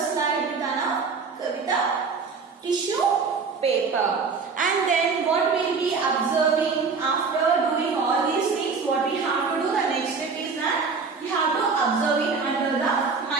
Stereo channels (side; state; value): left; quieter; 4.9 dB